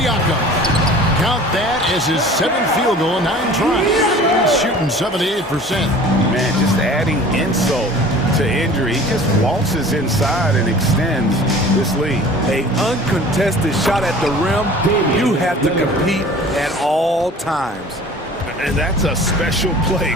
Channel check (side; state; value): both; normal; correlation 0.44